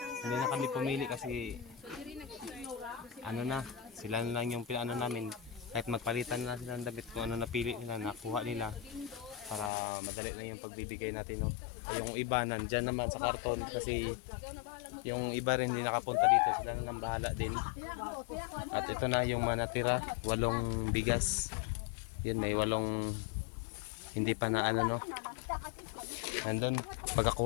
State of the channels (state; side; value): drops out; right; at 9.7 s